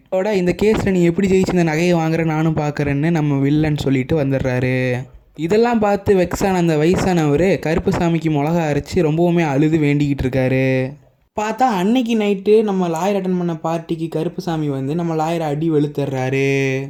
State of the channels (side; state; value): both; identical; correlation 1.00